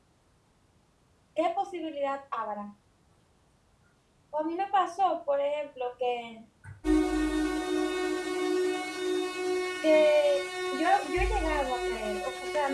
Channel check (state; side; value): identical; both; correlation 1.00